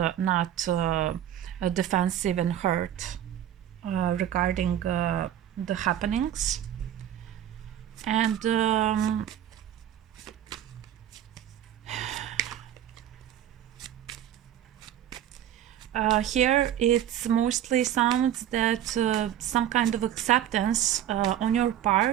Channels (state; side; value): quieter; left; 11.0 dB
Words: not defensive and hurt regarding the happenings. And here it's mostly sounds that some kind of acceptance on your